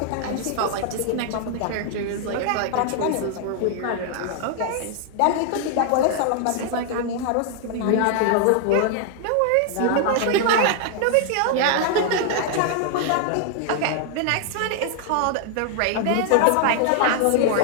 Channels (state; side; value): different; both; correlation 0.00